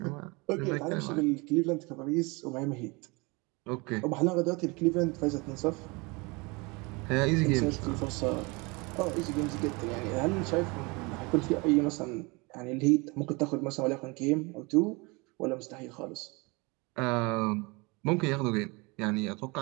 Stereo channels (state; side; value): quieter; left; 27.0 dB